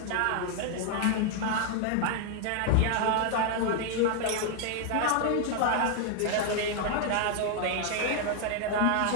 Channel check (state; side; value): different; both; correlation 0.00